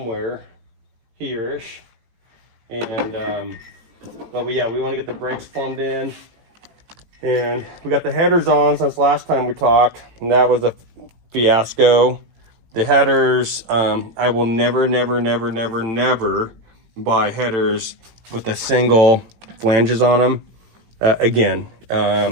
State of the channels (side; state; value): left; late; 18 ms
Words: here-ish. And but yeah, we want to get the brakes formed in, and we got the headers on since last time we talked, and that was a fiasco. The headers, I will never buy headers with a single flanges on them again.